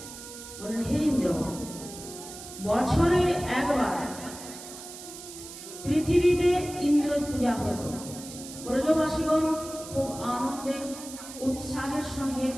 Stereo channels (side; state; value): right; noise; hiss, 13 dB below the sound